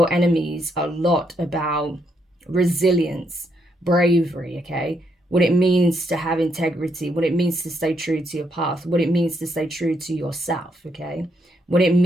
enemies a lot about resilience, bravery, okay, what it means to have integrity, what it means to stay true to your path, what it means to stay true to yourself, okay, what it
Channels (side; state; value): both; normal; correlation 0.76